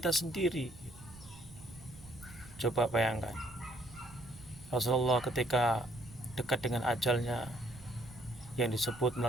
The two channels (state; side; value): noise; right; rumble, 19 dB below the sound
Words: sendiri. Coba bayangkan, Rasulullah ketika dekat dengan ajalnya, yang disebut